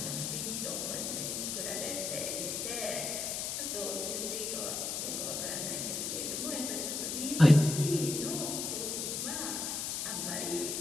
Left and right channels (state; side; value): noise; left; hiss, 2 dB below the sound